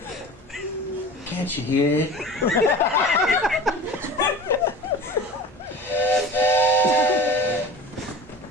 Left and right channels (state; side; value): normal; both; correlation 0.37